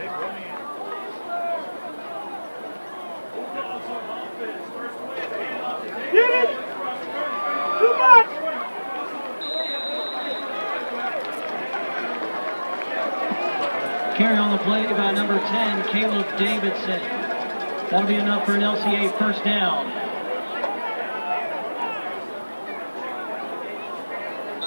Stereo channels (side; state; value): both; inverted; correlation -1.00